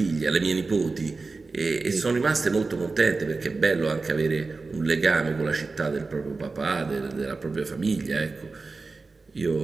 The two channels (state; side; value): quieter; left; 3.9 dB